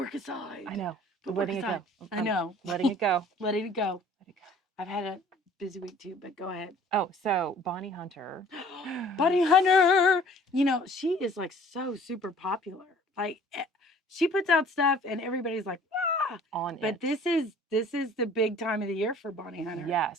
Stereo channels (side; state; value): both; normal; correlation 0.52